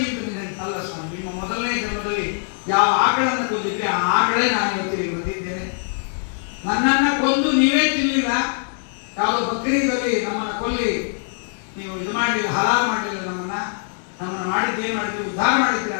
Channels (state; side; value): silent; right; 56 dB below the other